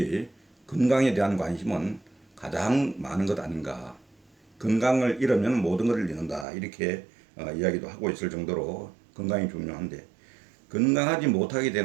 건강에 대한 관심은 가장 많은 것 아닌가. 건강을 잃으면 모든 것을 잃는다, 이렇게 이야기도 하고 있을 정도로 건강이 중요한데, 건강하지 못하게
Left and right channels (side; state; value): left; drops out; at 6.5 s